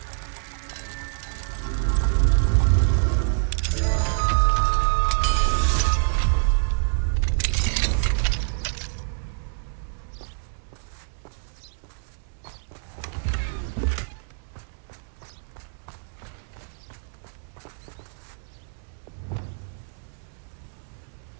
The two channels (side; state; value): left; silent; digital silence